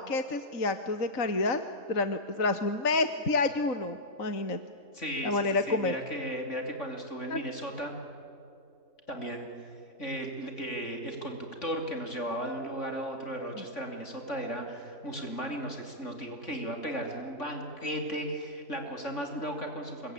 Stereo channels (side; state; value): right; late; 3.5 ms